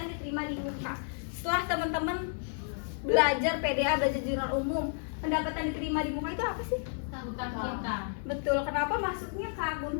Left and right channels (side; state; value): right; silent; 57 dB below the other